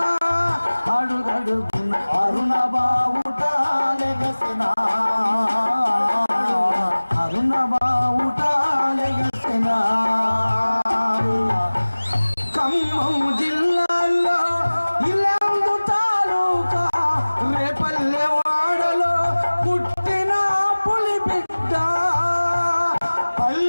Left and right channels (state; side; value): inverted; both; correlation -1.00